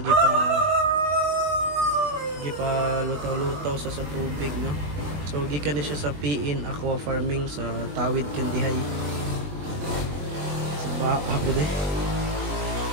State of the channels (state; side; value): late; left; 20 ms